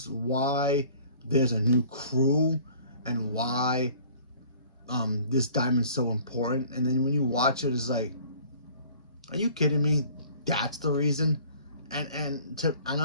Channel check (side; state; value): both; inverted; correlation -0.51